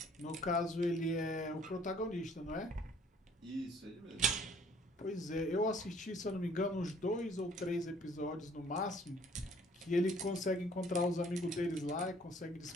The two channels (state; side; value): normal; both; correlation 0.58